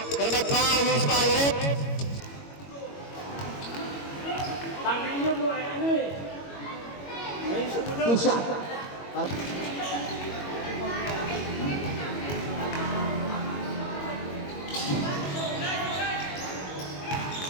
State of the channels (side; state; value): right; late; 21 ms